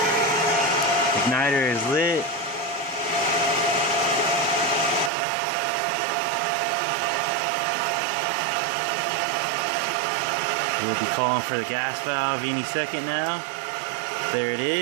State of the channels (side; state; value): left; drops out; at 5.1 s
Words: Igniter is lit. We'll be calling for the gas valve any second now. There it